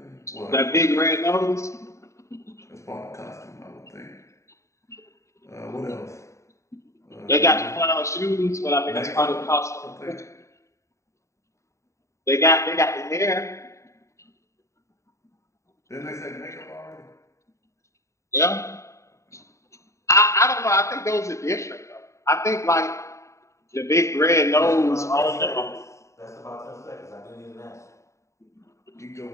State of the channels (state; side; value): late; right; 0.14 ms